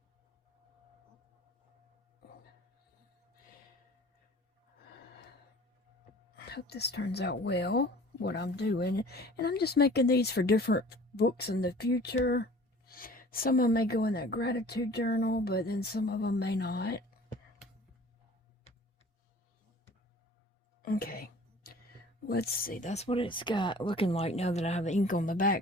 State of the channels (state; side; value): normal; both; correlation 0.47